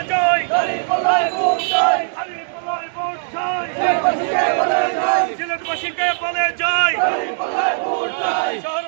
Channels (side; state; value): left; silent; digital silence